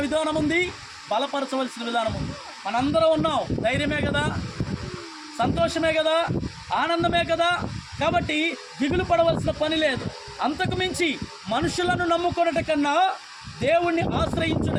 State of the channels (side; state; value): both; identical; correlation 1.00